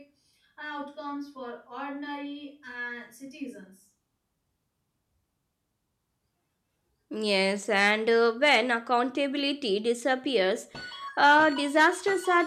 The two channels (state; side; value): identical; both; correlation 1.00